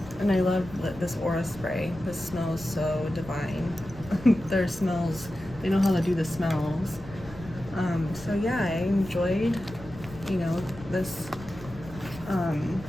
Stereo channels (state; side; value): noise; left; rumble, 16 dB below the sound